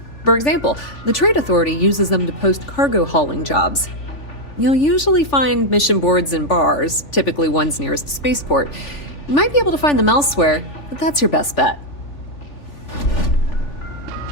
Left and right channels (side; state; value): right; late; 3.4 ms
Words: For example, the Trade Authority uses them to post cargo hauling jobs. You'll usually find mission boards in bars, typically ones nearest spaceport. You might be able to find them elsewhere, but that's your best bet.